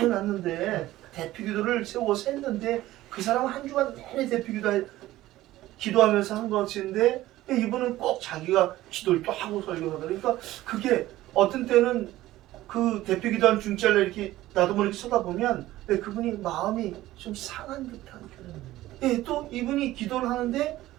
대표 기도를 세워서 했는데 그 사람은 한 주간 내내 대표 기도하면서 한 것인데 이분은 꼭 자기가 기도를 또 하고 설교하다 그러니까 그게 어떤 때는 그 대표 기도한 중짜를 이렇게 나도 모르게 쳐다보면 그분이 마음이 좀 상한 듯한 또 이분이 기도를 하는데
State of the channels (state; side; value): quieter; left; 15.9 dB